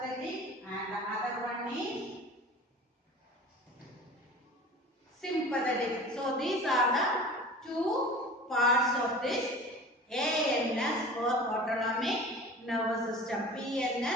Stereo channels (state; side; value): normal; both; correlation 0.39